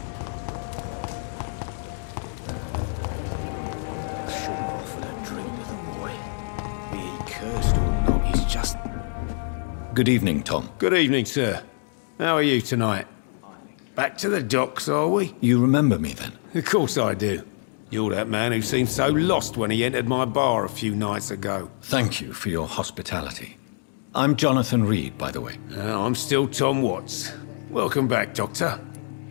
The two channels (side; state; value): right; silent; digital silence